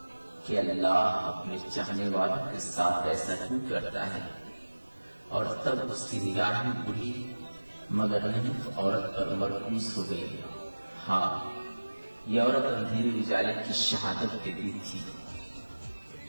कि अल्लाह अपने चाहने वालों के साथ ऐसा क्यों करता है। और तब उसकी निगाहें बुढ़ी मगर नहीं औरत पर मरकूज हो गई। हाँ, यह औरत अंधेरे उजाले की शहादत देती थी।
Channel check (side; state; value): both; inverted; correlation -1.00